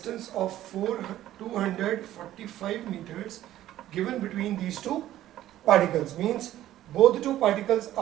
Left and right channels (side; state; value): left; quieter; 13.5 dB